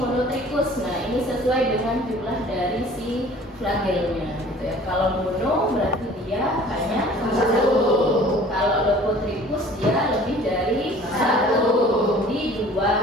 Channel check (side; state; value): both; normal; correlation 0.49